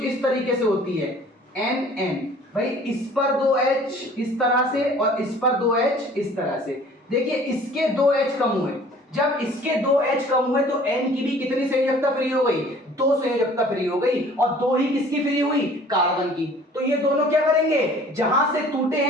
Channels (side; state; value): both; normal; correlation 0.51